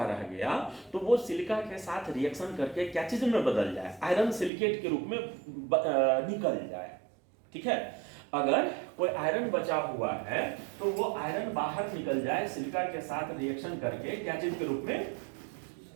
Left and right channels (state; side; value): drops out; left; at 4.5 s